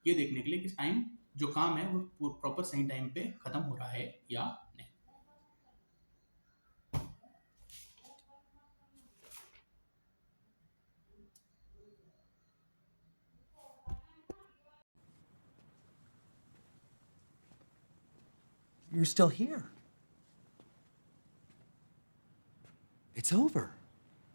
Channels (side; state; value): both; inverted; correlation -1.00